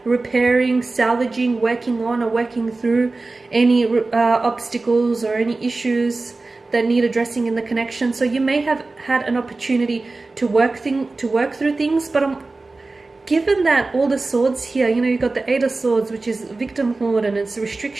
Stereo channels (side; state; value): left; quieter; 3.4 dB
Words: repairing, salvaging, working on or working through any obstacles or any issues that need addressing in the connection. So you may have had an opportunity to work through things, but given that all the swords here, you know, you've got the Eight of Swords, which is victimhood and it's